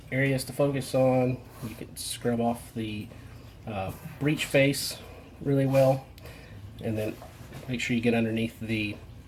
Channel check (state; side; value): identical; both; correlation 1.00